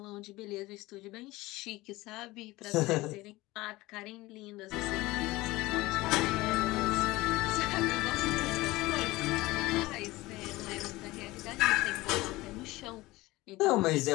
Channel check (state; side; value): quieter; right; 19.7 dB